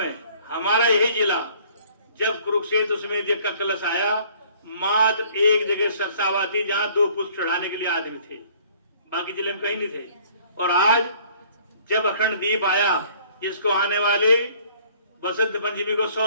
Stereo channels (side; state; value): both; inverted; correlation -0.56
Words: हमारा यही जिला, जब कुरुक्षेत्र समेत यज्ञ का कलश आया, मात्र एक जगह सरसावा थी जहां 2 पुष्प चढ़ाने के लिए आदमी थे, बाकी जिले में कहीं नहीं थे। और आज जब अखंड दीप आया, जिसको आने वाले बसंत पंचमी को